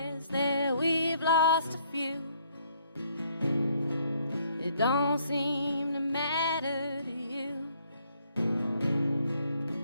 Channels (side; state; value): both; inverted; correlation -0.67